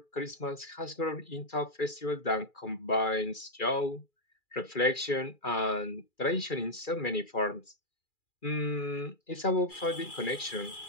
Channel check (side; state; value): right; late; 2.4 ms